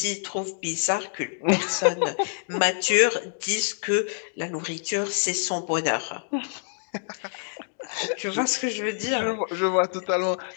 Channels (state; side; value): silent; right; 61 dB below the other